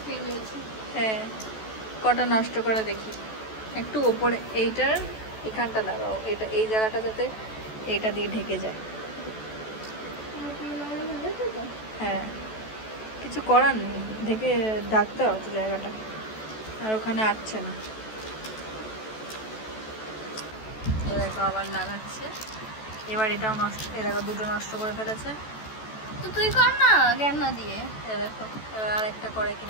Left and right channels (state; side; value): late; right; 14 ms